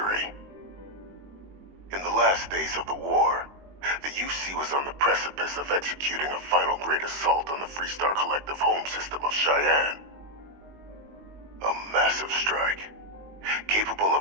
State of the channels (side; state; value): left; late; 21 ms